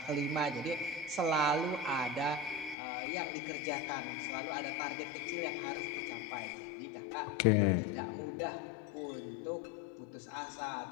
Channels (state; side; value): drops out; right; at 2.8 s